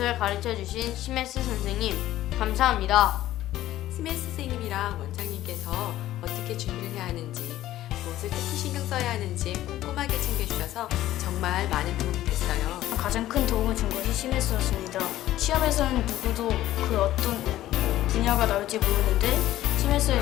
가르쳐 주신 CMS 선생님, 감사합니다. CMS 선생님이랑 원장님께서 어떻게 준비를 해야 하는지, 무엇을 특히 신경 써야 하는지 꼼꼼하게 챙겨주셔서 정말 많은 도움이 됐어요. 가장 큰 도움을 준 것이 CMS였습니다. 시험에서는 누구도 그 어떤 분야가 나올지 모르는데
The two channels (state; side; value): quieter; right; 14.2 dB